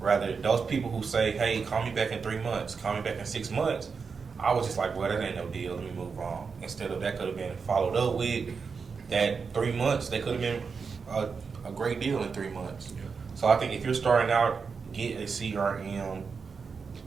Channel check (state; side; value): quieter; left; 5.4 dB